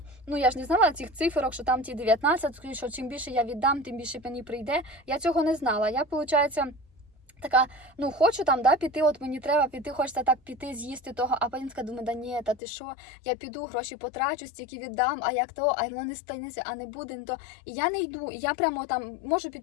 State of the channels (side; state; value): right; drops out; at 12.6 s